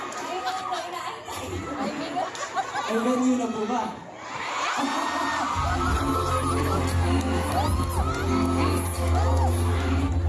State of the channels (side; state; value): both; identical; correlation 1.00